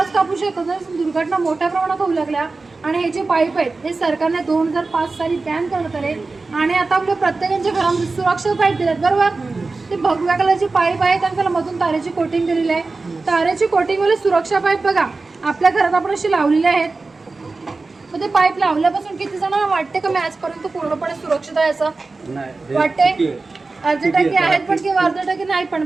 कापू शकतो. जर दुर्घटना मोठ्या प्रमाणात होऊ लागल्या आणि हे जे पाईप आहेत हे सरकारने 2005 साली बॅन करण्यात आले आणि आता आपल्या प्रत्येकाच्या घरामध्ये सुरक्षा पाईप दिलेत बरोबर. ते भगव्या कलरचे पाईप आहेत आणि त्याला मधून तारेची कोटिंग दिलेली आहे. तारेची कोटिंगवाले सुरक्षा पाईप बघा आपल्या घरात आपण असे लावलेले आहेत. मग ते पाईप लावल्यापासून किती जणांना वाटते का मी आजपर्यंत पूर्णपणे सुरक्षित आहे असं वाटते? अर्धे टक्के आहेत पण किंवा अर्धे टक्के नाही पण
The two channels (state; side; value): quieter; left; 3.7 dB